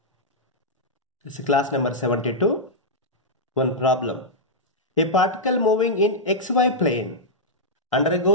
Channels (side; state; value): both; normal; correlation -0.07